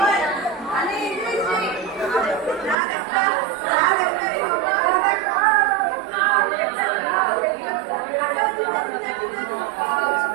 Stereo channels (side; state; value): left; drops out; at 2.8 s